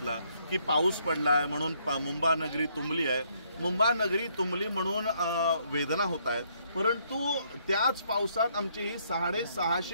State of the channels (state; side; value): inverted; both; correlation -0.70